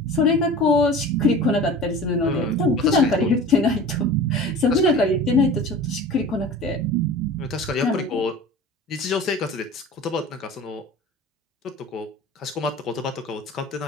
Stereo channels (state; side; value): normal; both; correlation 0.38